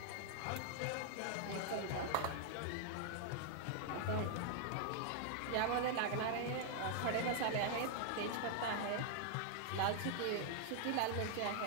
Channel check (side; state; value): both; different; correlation 0.00